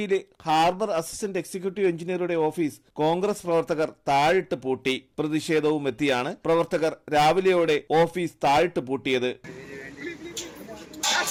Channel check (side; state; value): both; identical; correlation 1.00